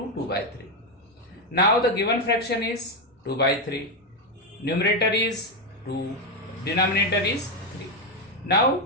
2 by 3. Now the given fraction is 2 by 3. Numerator is 2. Denominator is 3.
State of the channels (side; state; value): both; normal; correlation 0.07